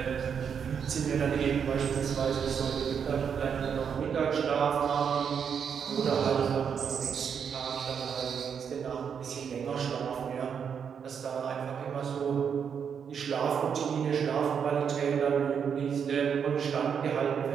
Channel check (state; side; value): quieter; left; 7.2 dB